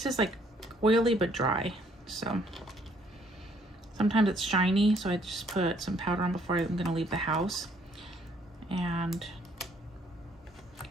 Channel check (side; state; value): both; normal; correlation 0.65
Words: is like oily but dry, so sometimes it's shiny, so I just put some powder on before I'm gonna leave the house. And